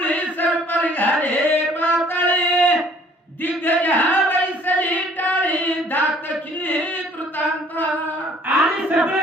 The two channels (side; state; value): both; normal; correlation 0.57